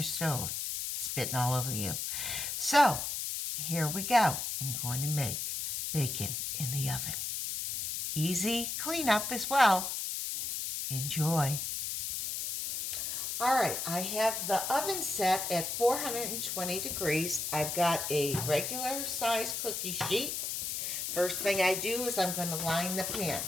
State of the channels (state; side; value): noise; left; hiss, 3 dB below the sound